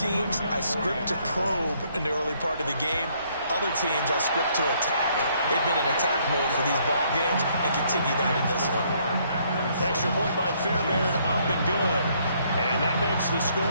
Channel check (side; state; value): both; inverted; correlation -0.68